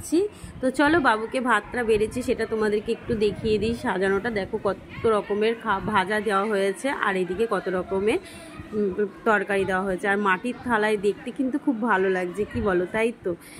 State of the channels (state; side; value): identical; both; correlation 1.00